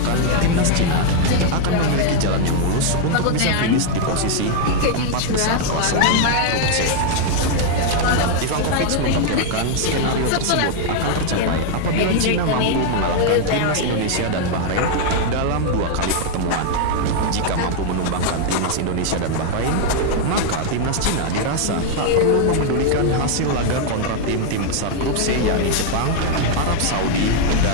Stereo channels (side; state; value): both; different; correlation 0.00